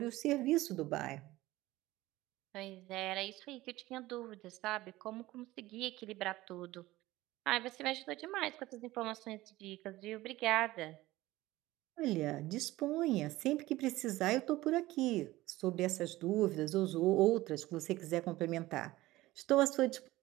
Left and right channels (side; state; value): left; quieter; 17.7 dB